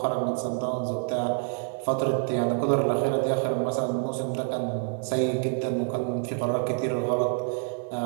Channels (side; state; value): left; silent; 60 dB below the other